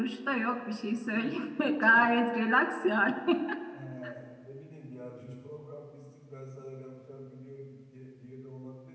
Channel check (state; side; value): identical; both; correlation 1.00